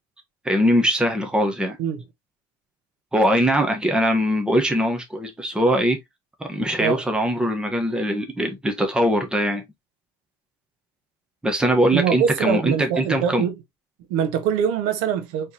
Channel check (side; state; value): both; normal; correlation 0.64